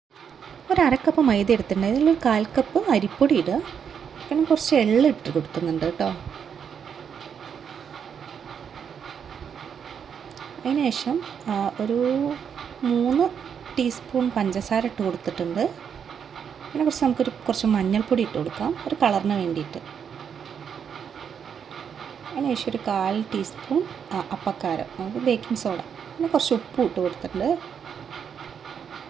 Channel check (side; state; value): left; quieter; 7.5 dB